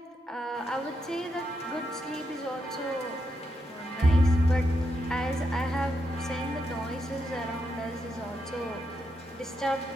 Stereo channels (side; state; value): both; normal; correlation 0.83